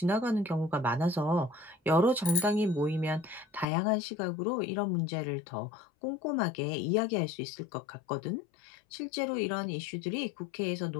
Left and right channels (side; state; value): right; drops out; at 3.7 s